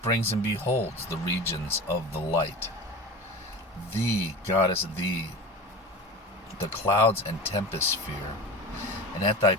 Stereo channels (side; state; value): both; normal; correlation 0.31